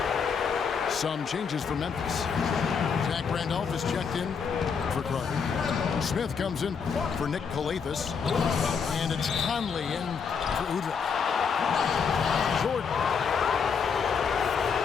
Some changes for Memphis. Zach Randolph is checked in for Carter. Smith comes in for Nick Calathis. And it's Conley in for Udrich. Jordan.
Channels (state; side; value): quieter; right; 6.1 dB